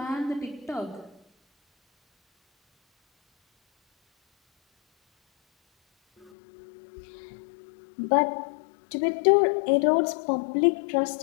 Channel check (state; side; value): drops out; right; at 6.3 s